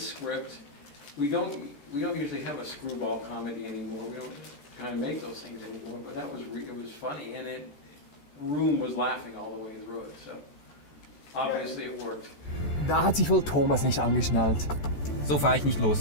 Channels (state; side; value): late; right; 14 ms